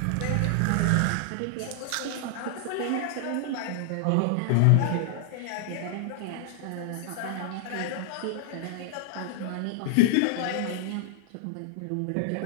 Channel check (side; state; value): both; different; correlation 0.00